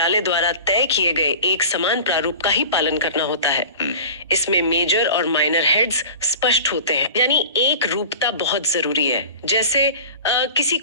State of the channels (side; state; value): both; inverted; correlation -0.38